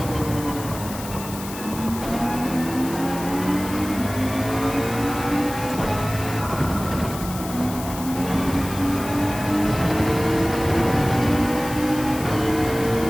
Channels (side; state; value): left; noise; hiss, 12 dB below the sound